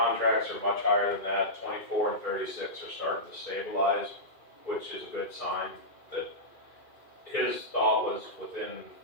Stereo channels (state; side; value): late; right; 2.4 ms